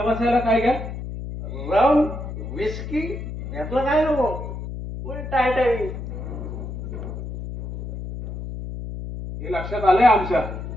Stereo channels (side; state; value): left; noise; hum, 8 dB below the sound